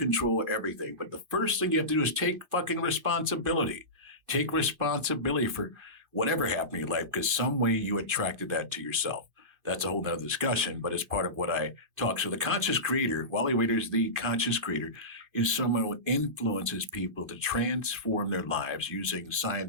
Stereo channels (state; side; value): late; left; 2.5 ms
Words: everything. But the first thing you have to do is take fucking responsibility. Take responsibility for whatever happened in your life because some way you attracted that to yourself. That's a whole nother discussion, but it's part of what I talk. So the Conscious Creator, Wali Waiters, the Conscious Creator, is someone who influences people to transform their lives using